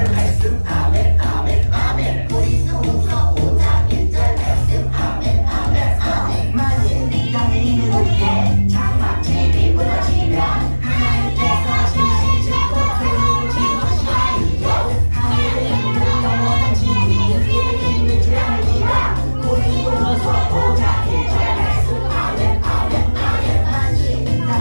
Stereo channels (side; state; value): both; inverted; correlation -1.00